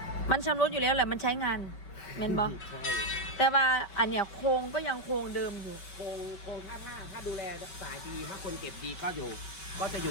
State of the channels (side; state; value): right; late; 5.2 ms